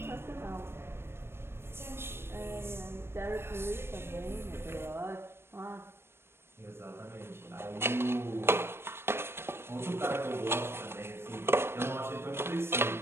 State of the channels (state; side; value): late; left; 0.12 ms